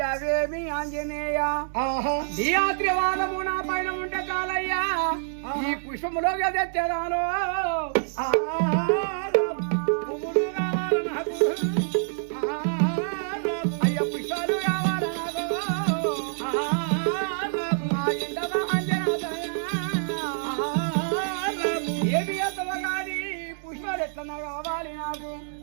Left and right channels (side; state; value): left; silent; digital silence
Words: ఆంజనేయ ఆహా నీ ఆత్రివాదము నా పైన ఉంటే చాలయ్యా. ఈ పుష్పములో తెచ్చేదాను. అయ్య పుష్పాలు కావాలి నాకు. మా ఇంటవ ఆంజనేయ. ఏమి ఎత్తవ కానీ పుష్పాలు ఎట్లా కావాలి నాకు.